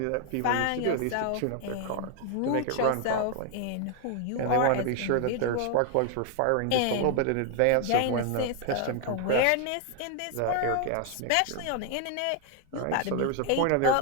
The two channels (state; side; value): different; both; correlation 0.01